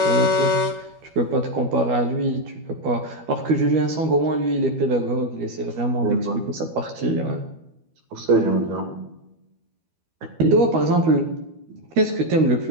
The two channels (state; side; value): late; left; 12 ms